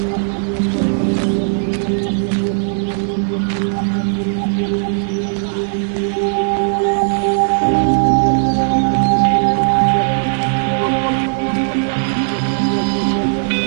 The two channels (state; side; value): silent; left; 58 dB below the other